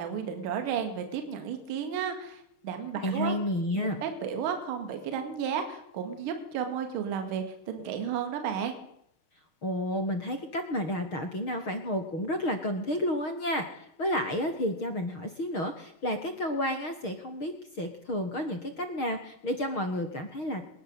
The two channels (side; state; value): right; late; 6.4 ms